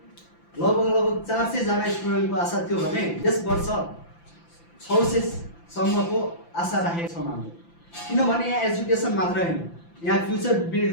लगभग 400 जना स्टुडेन्टको आशा थियो भने यस वर्ष 600 सम्मको आशा राखेको छौँ हामीले। किनभने यहाँ एजुकेसन मात्र हैन, यहाँ फ्युचर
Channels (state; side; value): late; right; 5.9 ms